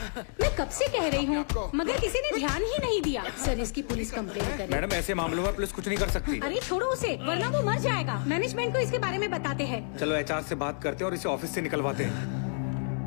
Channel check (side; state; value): right; silent; digital silence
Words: मैं कब से कह रही हूँ, मगर किसी ने ध्यान ही नहीं दिया। सर इसकी पुलिस कंप्लेंट करें। मैडम ऐसे मामलों में पुलिस कुछ नहीं कर सकती। अरे छोड़ो उसे, वरना वो मर जाएगा। मैनेजमेंट को इसके बारे में बताते हैं। चलो एचआर से बात करते हैं और इसे ऑफिस से निकलवाते